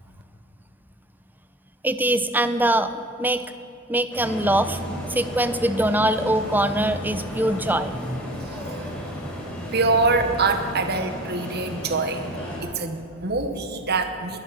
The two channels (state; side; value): normal; both; correlation 0.37